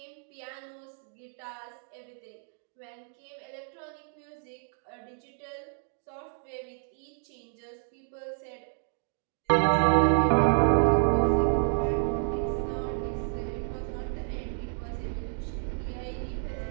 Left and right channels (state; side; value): silent; left; digital silence